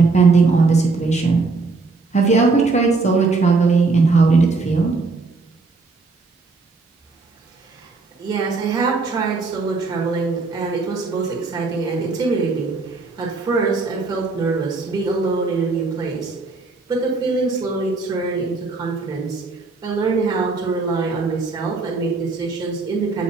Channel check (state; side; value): quieter; left; 3.9 dB